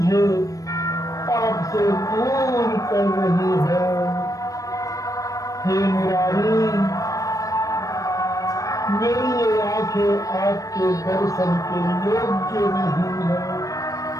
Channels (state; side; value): late; right; 0.16 ms